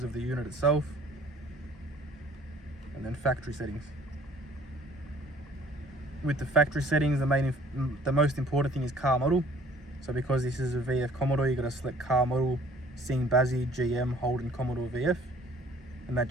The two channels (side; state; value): both; normal; correlation 0.55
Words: of the unit itself. And then factory settings. With the factory settings, the most important thing is car model. So because this is a VF Commodore, you got to select car model, Sing Bazzi, GM, Holden, Commodore VF. And that